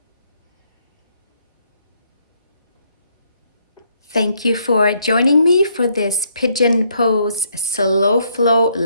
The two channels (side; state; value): both; inverted; correlation -0.72